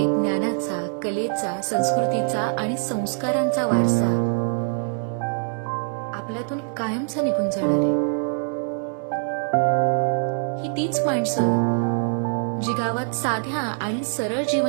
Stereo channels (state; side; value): silent; left; 58 dB below the other